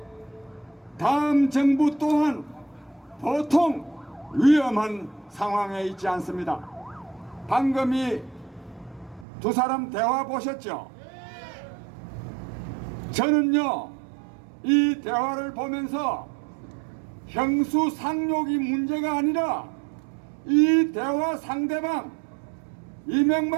다음 정부 또한 보통 위험한 상황에 있지 않습니다. 방금 이 두 사람 대화 보셨죠? 저는요, 이 대화를 보면서 형수상욕이 문제가 아니라 이 대화 상대방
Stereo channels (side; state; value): left; drops out; at 9.2 s